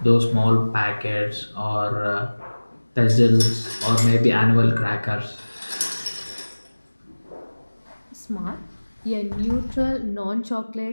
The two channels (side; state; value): both; inverted; correlation -1.00